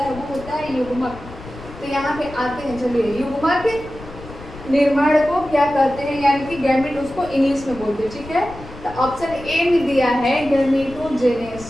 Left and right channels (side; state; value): left; noise; rumble, 16 dB below the sound